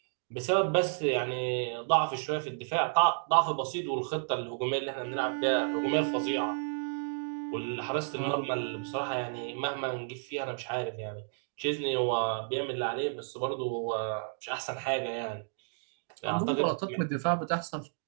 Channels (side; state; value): left; silent; 57 dB below the other